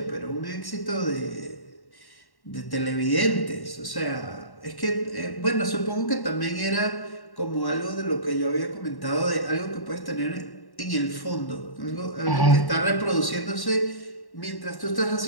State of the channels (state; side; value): late; right; 1.1 ms